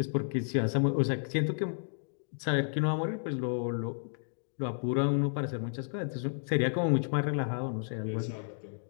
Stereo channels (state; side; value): silent; right; digital silence